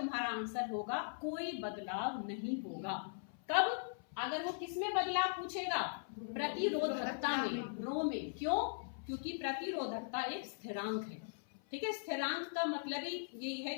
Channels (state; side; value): silent; right; 51 dB below the other